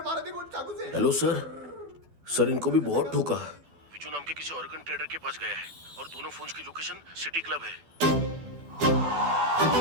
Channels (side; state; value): left; late; 12 ms